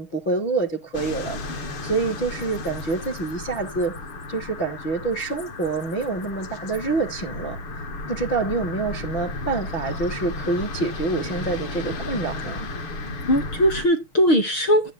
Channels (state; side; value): late; right; 6.4 ms